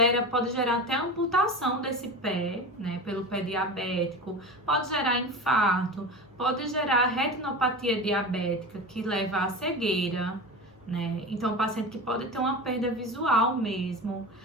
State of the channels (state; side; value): normal; both; correlation 0.29